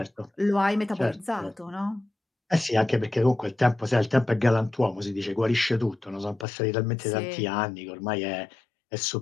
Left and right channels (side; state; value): right; drops out; at 6.5 s